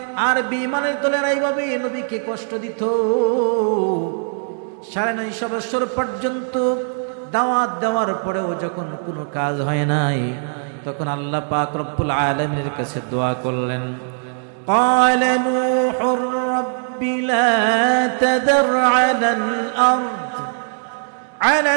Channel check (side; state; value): left; silent; 66 dB below the other